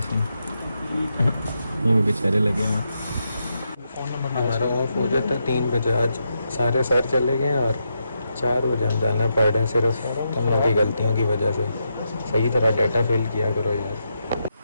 ये भी बेचारे लगे हैं। फ़ोन नंबर हमारा ऑफ हो जाता है 3 बजे। आज सारे सर चले गए और 4 बजे हम जाना पड़ रहे हैं सिर्फ तुम लोग की गलतियों की वजह से। सही तरह डाटा फिल किया करो यार।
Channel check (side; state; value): both; inverted; correlation -0.83